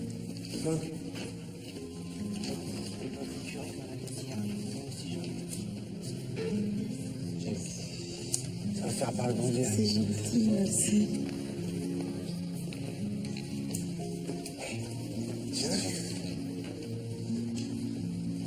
Ça va faire par le bon Dieu. C'est gentil, merci.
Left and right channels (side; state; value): both; identical; correlation 1.00